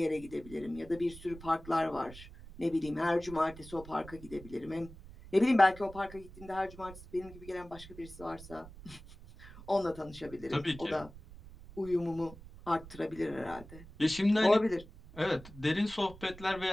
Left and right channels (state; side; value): noise; right; rumble, 17 dB below the sound